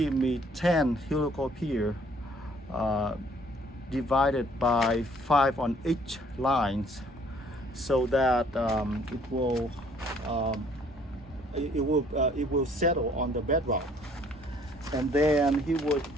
10 helical pier divided by 5 on each lines, so that it will settle on the bedrock. And then he would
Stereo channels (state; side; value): normal; both; correlation 0.60